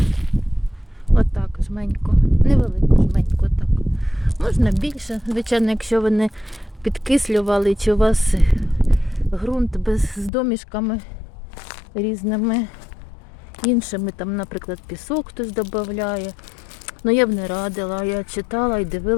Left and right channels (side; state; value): right; drops out; at 10.3 s